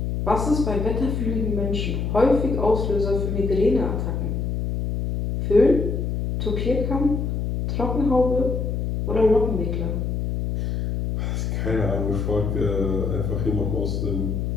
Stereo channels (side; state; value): left; noise; hum, 1 dB below the sound